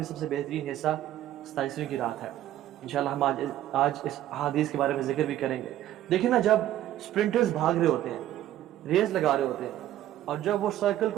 سب سے بہترین حصہ 27ویں کی رات ہے۔ انشاءاللہ ہم آج اس احادیث کے بارے میں ذکر بھی کریں گے۔ دیکھیں نا، جب سپرنٹرز بھاگ رہے ہوتے ہیں، ریس لگا رہے ہوتے ہیں، اور جب وہ سرکل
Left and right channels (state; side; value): quieter; left; 12.9 dB